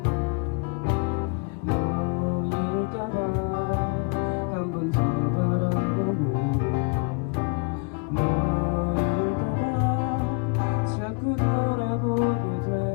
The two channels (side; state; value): right; quieter; 34.2 dB